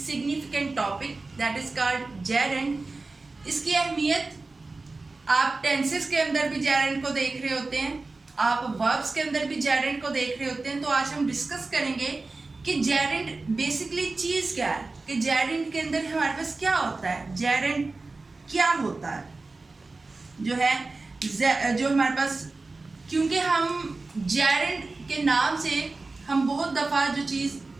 topic that is called gerund. इसकी अहमियत आप टेंसेस के अंदर भी जेरेंड को देख रहे होते हैं, आप वर्ब्स के अंदर भी जेरेंड को देख रहे होते हैं. तो आज हम डिस्कस करेंगे कि जेरेंड बेसिकली चीज़ क्या है, कि जेरेंड के अंदर हमारे पास क्या होता है, जेरेंड क्या होता है जो हमारे पास. क्योंकि हम जेरेंड के नाम से हम बहुत दफ़ा जो चीज़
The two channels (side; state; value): left; quieter; 3.5 dB